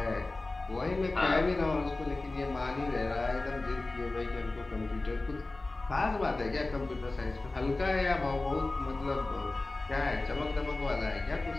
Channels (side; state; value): right; quieter; 3.1 dB